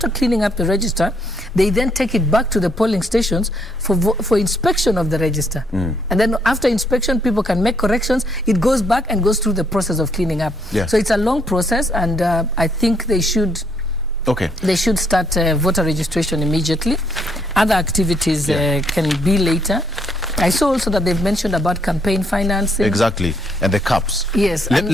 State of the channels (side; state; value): both; normal; correlation 0.71